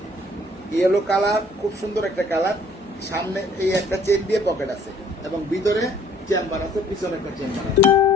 ইয়েলো কালার, খুব সুন্দর একটা কালার। সামনে এই একটা চেন দিয়ে পকেট আছে এবং ভিতরে চেম্বার আছে, পিছনে একটা চেম্বার আছে,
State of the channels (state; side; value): normal; both; correlation 0.58